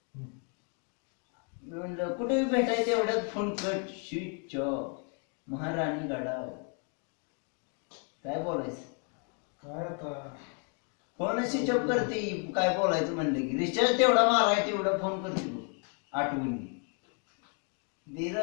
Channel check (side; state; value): right; quieter; 38.6 dB